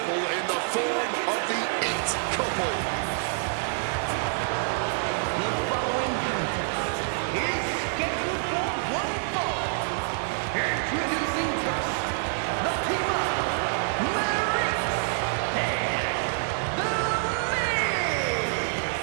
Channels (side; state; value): left; silent; 60 dB below the other